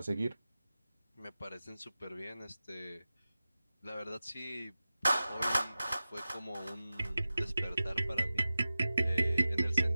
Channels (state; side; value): inverted; both; correlation -0.95